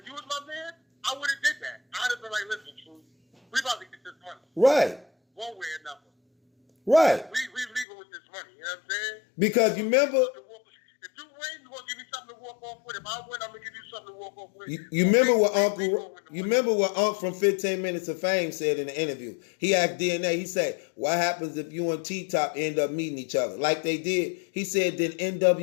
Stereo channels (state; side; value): drops out; right; at 7.9 s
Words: did that. I'd have been like, listen, True, we about to get this money. Right. One way or another. Right. We leaving with this money, you know what I'm saying? Because you remember, if you win, you're gonna give me something to walk off with. If I win, I'm gonna give you something to walk off with. you remember what Unc from 15 Minutes of Fame said in the interview. He asked DNA, he said, what happens if you and T-Top end up meeting each other? Like they did. He said, then